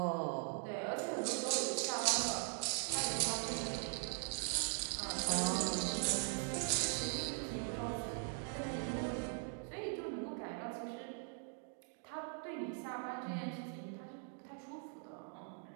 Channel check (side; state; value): left; silent; 50 dB below the other